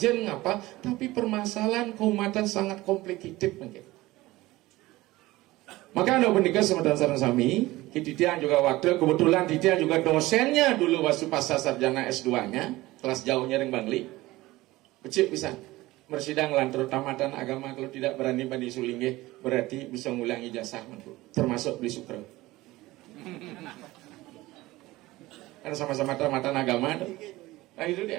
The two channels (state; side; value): quieter; left; 18.7 dB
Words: ngapa, tapi permasalahan keumatan sangat komplikated mungkin. Maka anda menikah sama sarang sami, Titiang juga waktu, kebetulan Titiang juga dosennya dulu waktu pasca sarjana S2-nya, kelas jauhnya ring Bangli. Becik bisa, bersidang lantur tamatan agama, kalau tidak berani badi sulingge, berarti bisa ngulang ijazah, termasuk beli sukro. Karena sama-sama tamatan agama. Nah itu